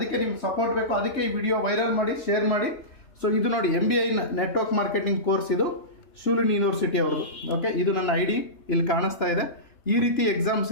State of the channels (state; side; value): late; right; 2.9 ms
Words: ನಿಮ್ಗೆ ಸಪೋರ್ಟ್ ಬೇಕು. ಅದಕ್ಕೆ ಈ ವಿಡಿಯೋ ವೈರಲ್ ಮಾಡಿ, ಶೇರ್ ಮಾಡಿ. ಸೊ ಇದು ನೋಡಿ MBA ನೆಟ್ವರ್ಕ್ ಮಾರ್ಕೆಟಿಂಗ್ ಕೋರ್ಸ್, ಇದು ಶೂಲಿನಿ ಯೂನಿವರ್ಸಿಟಿ ಅವ್ರದ್ದು. ಓಕೆ, ಇದು ನನ್ನ ID ಇಲ್ಲಿ ಕಾಣಿಸ್ತಾ ಇದೆ. ಈ ರೀತಿ ಎಕ್ಸಾಮ್ಸ್